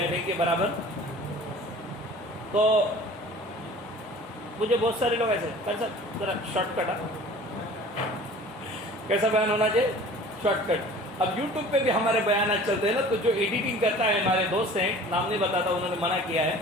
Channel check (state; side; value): normal; both; correlation 0.45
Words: نہیں کے برابر. تو مجھے بہت سارے لوگ ایسے کیسا ذرا شارٹ کٹ, کیسا بیان ہونا چاہیے, شارٹ کٹ. اب یوٹیوب پہ بھی ہمارے بیانات چلتے ہیں نا, تو جو ایڈیٹنگ کرتا ہے ہمارے دوست ہیں, نام نہیں بتاتا, انہوں نے منع کیا ہے,